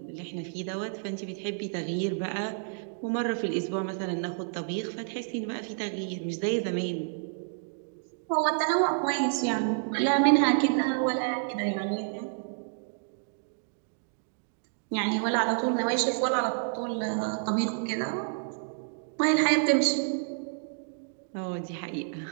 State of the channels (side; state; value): left; silent; digital silence